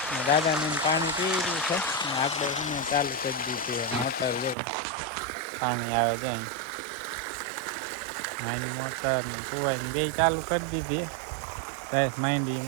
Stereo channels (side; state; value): left; drops out; at 4.5 s